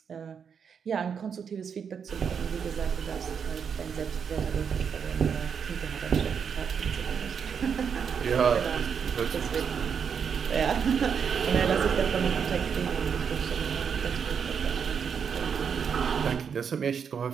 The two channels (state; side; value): quieter; left; 6.9 dB